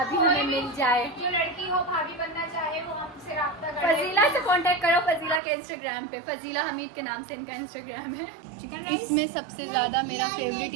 हमें मिल जाए। जो लड़की हो भाभी बनना चाहे वो हमसे राब्ता करे। फजीला से कांटेक्ट करो, फजीला के इंस्टाग्राम पे, फजीला हमीद के नाम से इनका इंस्टाग्राम है। इसमें सबसे ज़्यादा मेरा फेवरेट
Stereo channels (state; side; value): drops out; left; at 5.4 s